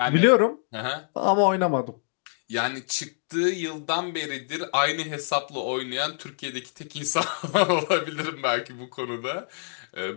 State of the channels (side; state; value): right; silent; digital silence